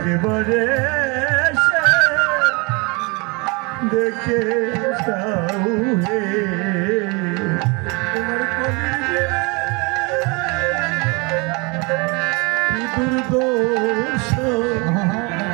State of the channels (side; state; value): left; quieter; 29.1 dB